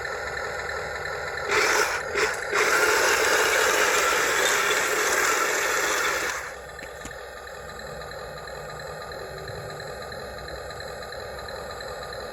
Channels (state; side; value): identical; both; correlation 1.00